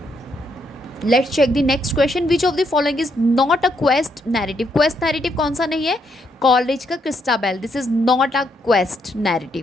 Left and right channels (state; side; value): normal; both; correlation 0.76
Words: Let's check the next question, which of the following is not a quest narrative? Quest narrative कौन सा नहीं है? कॉलरिज का Christabel, this is not a quest